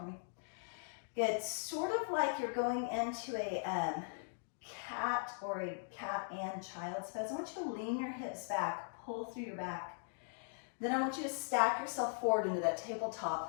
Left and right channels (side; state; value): right; silent; digital silence